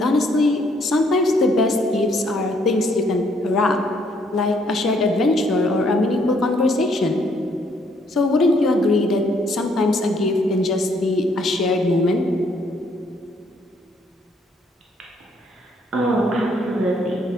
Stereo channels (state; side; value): normal; both; correlation 0.68